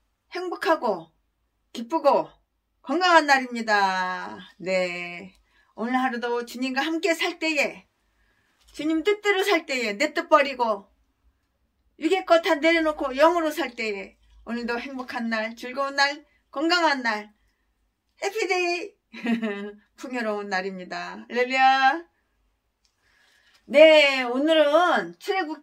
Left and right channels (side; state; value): both; identical; correlation 1.00